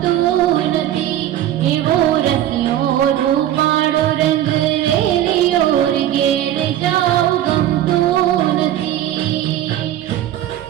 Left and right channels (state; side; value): quieter; left; 12.2 dB